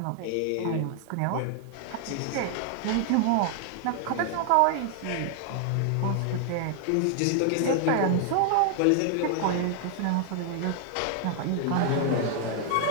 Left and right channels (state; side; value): different; both; correlation 0.00